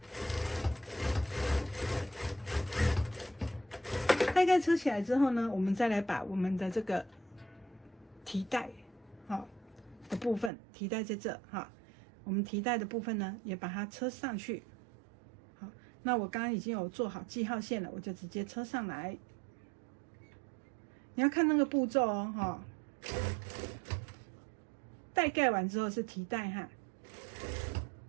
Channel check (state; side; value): drops out; left; at 10.5 s